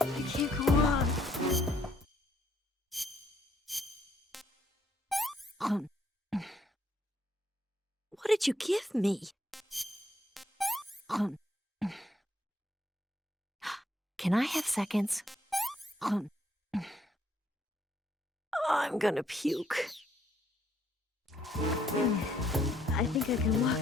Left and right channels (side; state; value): both; normal; correlation 0.70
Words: I can't go on. What did you give me? Can I have seconds? I'm gonna puke. I think I can